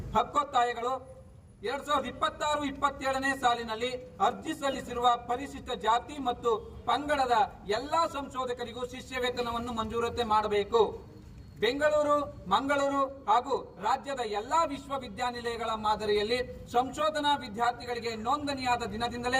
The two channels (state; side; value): identical; both; correlation 1.00